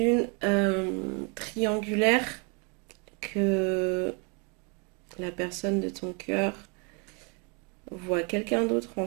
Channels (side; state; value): left; quieter; 32.8 dB